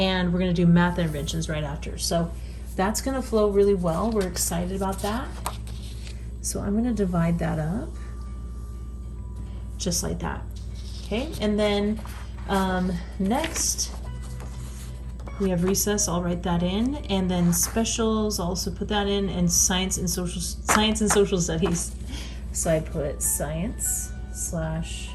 we're going to do math interventions right after. So that's going to flow really well. We're excited about that. So I'm going to divide that up just like that. Okay, and then next we have recess. I'll write that in, and then specials, I'll also put that in, and science and social studies. So I put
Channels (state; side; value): identical; both; correlation 1.00